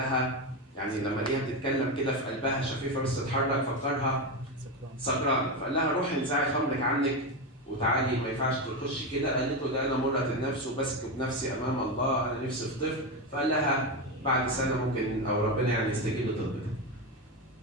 يعني لما ليها بتتكلم كده في قلبها شفيفة بس تتحرك فكرها سكران، فقال لها روحي انزعي خمرك عنك وتعالي ما ينفعش تخشي كده. قالت له ده انا مرة النفس وبسكب نفسي امام الله، انا نفسي في طفل. فقال لها بعد سنة ممكن او ربنا يعني يستجيب لطلبك.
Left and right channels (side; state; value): both; normal; correlation 0.14